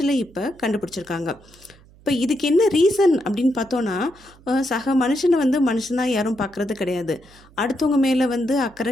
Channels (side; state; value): right; noise; hum, 26 dB below the sound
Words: இப்போ கண்டுபிடிச்சிருக்காங்க. இப்போ இதுக்கு என்ன ரீசன் அப்படின்னு பார்த்தோன்னா, சக மனுஷனை மனுஷனாக யாரும் பார்க்குறது கிடையாது. அடுத்தவங்க மேலே